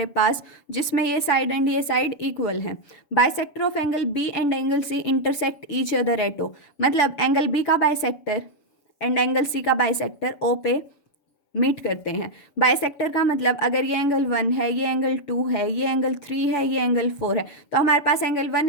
पास जिसमें ये साइड एंड ये साइड इक्वल है। Bisector of angle B and angle C intersect each other at O, मतलब एंगल बी का बाइसेक्टर एंड एंगल सी का बाइसेक्टर ओ पे मीट करते हैं। बाइसेक्टर का मतलब अगर ये एंगल 1 है, ये एंगल 2 है, ये एंगल 3 है, ये एंगल 4 है, तो हमारे पास एंगल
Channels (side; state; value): right; late; 7.0 ms